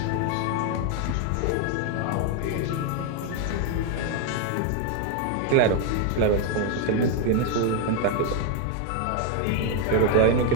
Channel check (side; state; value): both; different; correlation 0.01